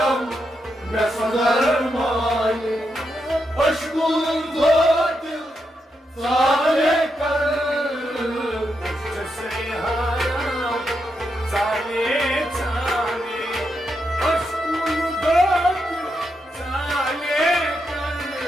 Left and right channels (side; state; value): both; normal; correlation 0.83